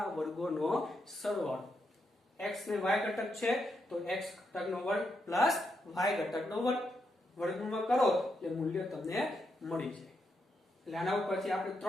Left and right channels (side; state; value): both; normal; correlation 0.82